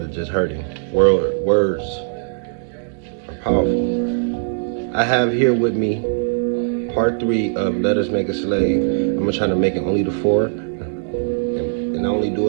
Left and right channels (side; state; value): left; silent; digital silence